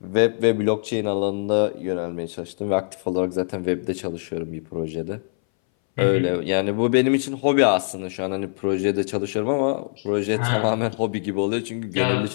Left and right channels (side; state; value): right; silent; 60 dB below the other